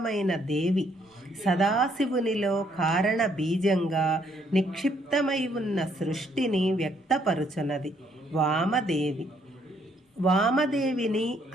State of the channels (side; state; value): both; normal; correlation 0.69